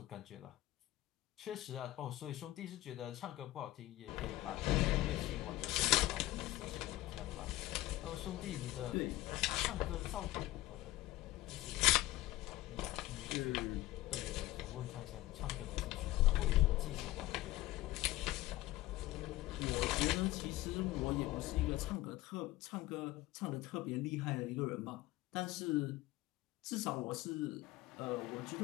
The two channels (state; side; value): quieter; right; 16.8 dB